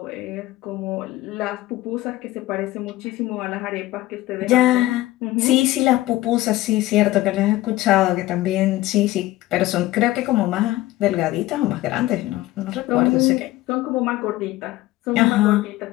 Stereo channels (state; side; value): quieter; right; 16.8 dB